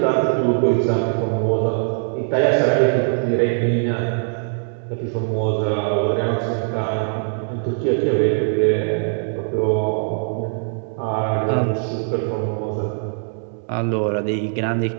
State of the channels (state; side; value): silent; left; digital silence